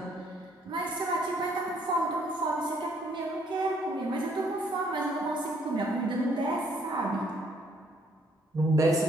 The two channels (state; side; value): normal; both; correlation 0.66